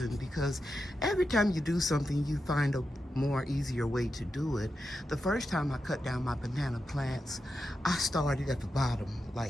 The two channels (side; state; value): both; normal; correlation 0.88